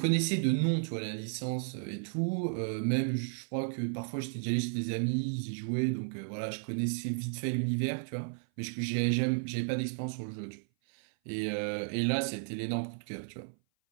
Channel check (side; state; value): left; silent; 55 dB below the other